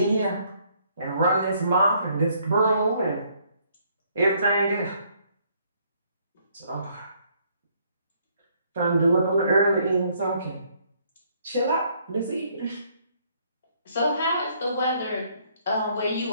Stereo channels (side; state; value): both; inverted; correlation -0.67